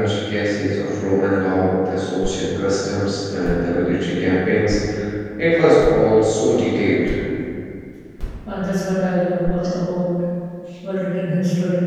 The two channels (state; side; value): identical; both; correlation 1.00